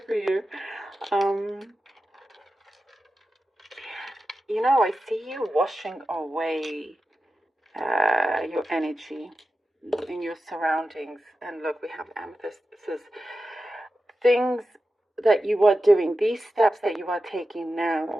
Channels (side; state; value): both; normal; correlation 0.92